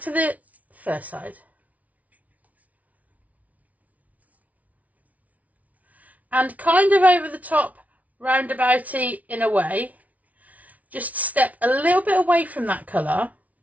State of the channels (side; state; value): left; late; 0.070 ms